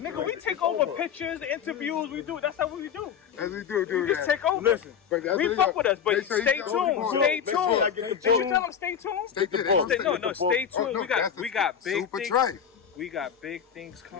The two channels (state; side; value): quieter; right; 7.9 dB